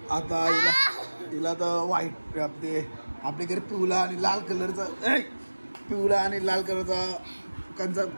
हिला तर व्हाईट आपल्या घरी पिवळा आणि लाल कलरचा कंचा.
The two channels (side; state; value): both; inverted; correlation -1.00